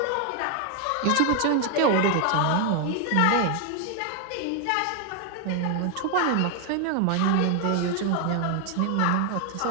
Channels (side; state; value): both; different; correlation 0.01